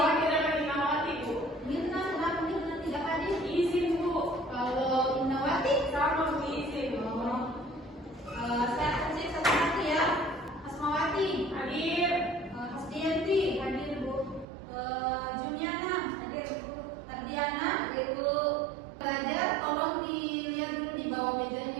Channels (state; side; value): drops out; left; at 14.5 s